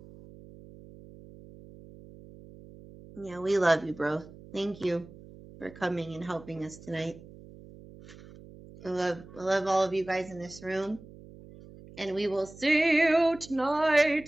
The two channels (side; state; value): right; noise; hum, 19 dB below the sound